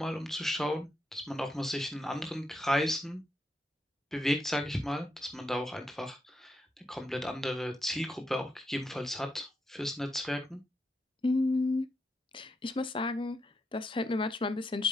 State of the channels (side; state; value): both; normal; correlation 0.82